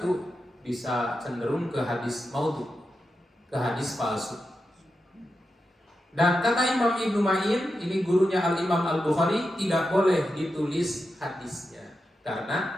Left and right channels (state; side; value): normal; both; correlation 0.89